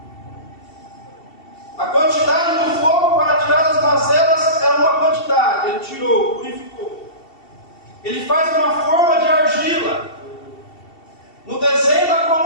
A quantidade do fogo para tirar as mazelas era uma quantidade. Ele tirou, purificou. Ele faz uma forma de argila no desenho da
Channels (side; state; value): right; late; 2.7 ms